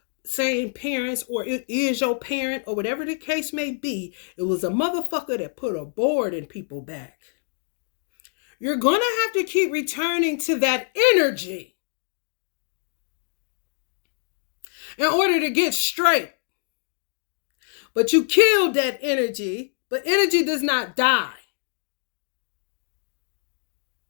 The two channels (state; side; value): silent; right; digital silence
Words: same parents, or it is your parent, or whatever the case may be. It was a motherfucker that put a board in people's back. You're going to have to keep returning to that energy in order to get straight. But you killed that energy, but energy does not die.